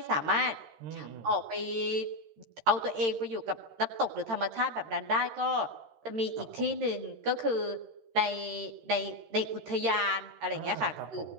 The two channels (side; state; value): left; late; 13 ms